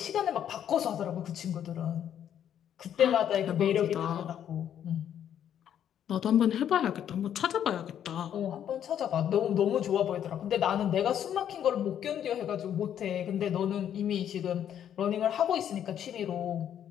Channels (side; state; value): right; quieter; 9.8 dB